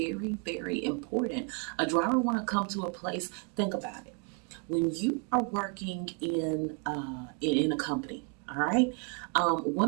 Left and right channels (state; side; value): quieter; left; 34.9 dB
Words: very important. A driver want to come to a place. Think about it. When you are working in a company, all right,